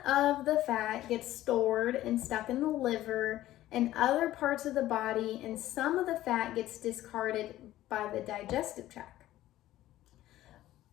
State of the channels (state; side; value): quieter; right; 14.6 dB